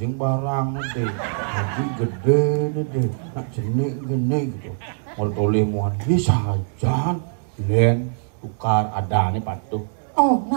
barang deh. Adik gede dede. Nak jenik gini gitu. Mau toleh muan bisa jalan. Len tukar ada nih patuh.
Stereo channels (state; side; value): silent; left; digital silence